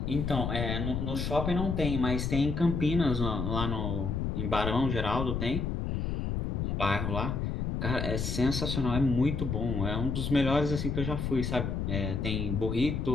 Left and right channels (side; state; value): left; noise; rumble, 1 dB below the sound